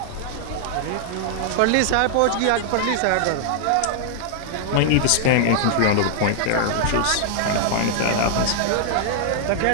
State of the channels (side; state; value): both; different; correlation -0.01